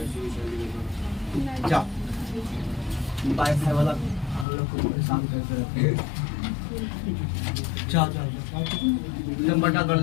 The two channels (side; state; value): right; drops out; at 4.5 s